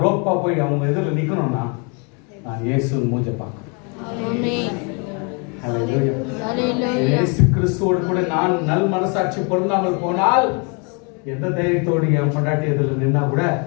ரோப்பா போய் அவங்க எதிரில் நிக்கணும்னா நான் இயேசு மூஞ்ச பார்க்கணும். இயேசு கிறிஸ்துவோடு கூட நான் நல் மனசாட்சி பொருந்தாமல் போனால் எந்த தைரியத்தோடு என் பொண்டாட்டி எதிரில் நின்னா கூட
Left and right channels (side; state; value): right; quieter; 34.5 dB